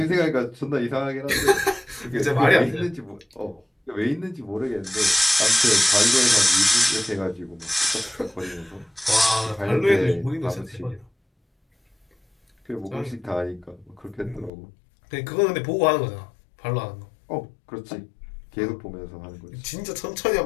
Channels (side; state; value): right; drops out; at 14.5 s